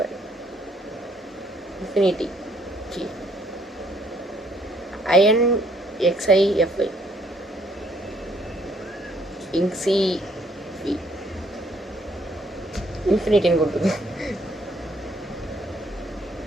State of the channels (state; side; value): normal; both; correlation 0.66